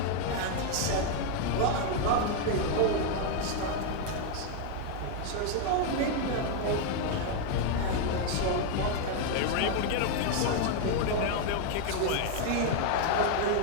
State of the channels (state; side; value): different; both; correlation 0.01